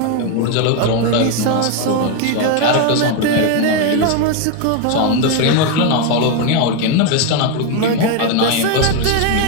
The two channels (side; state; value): both; different; correlation 0.01